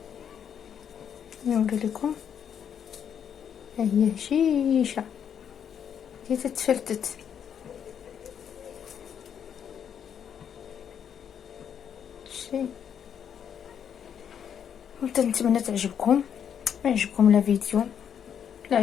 نوري لكم، ها هي هشيشه هي تتفلتت. شي نتمنى تعجبكم. عجبكم لا فيديو، لا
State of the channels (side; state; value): right; quieter; 8.3 dB